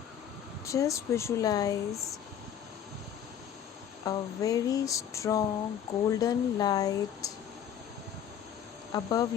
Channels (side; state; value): right; quieter; 9.0 dB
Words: Just visualize a very strong golden light above